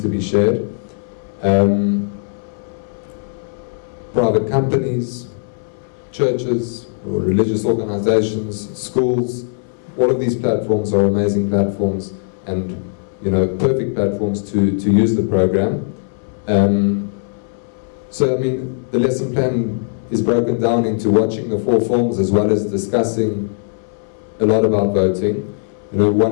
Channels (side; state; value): right; silent; digital silence